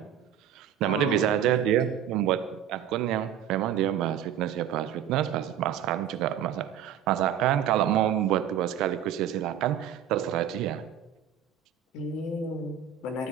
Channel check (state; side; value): quieter; left; 9.7 dB